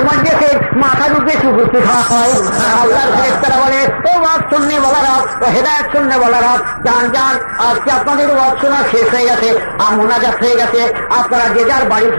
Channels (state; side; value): inverted; both; correlation -1.00